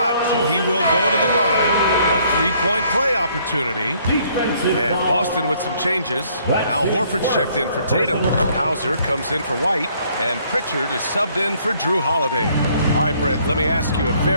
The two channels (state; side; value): inverted; both; correlation -0.64